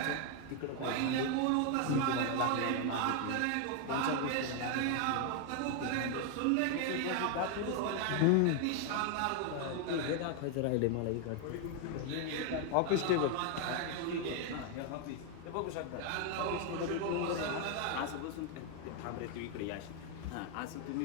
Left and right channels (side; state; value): both; different; correlation 0.01